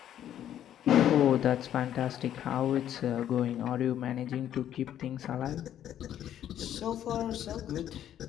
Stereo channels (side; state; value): right; quieter; 10.8 dB